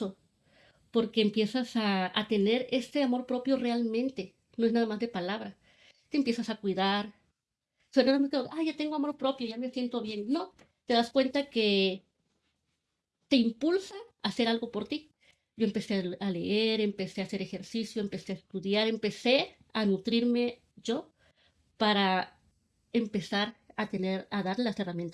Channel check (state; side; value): identical; both; correlation 1.00